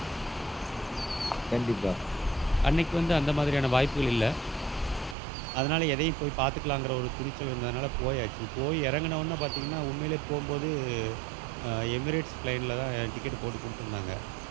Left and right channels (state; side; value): drops out; left; at 5.2 s